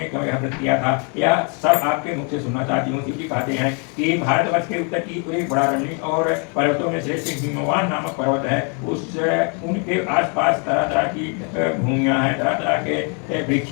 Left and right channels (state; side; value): quieter; right; 37.3 dB